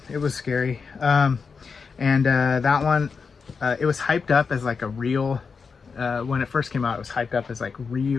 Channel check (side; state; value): right; quieter; 5.3 dB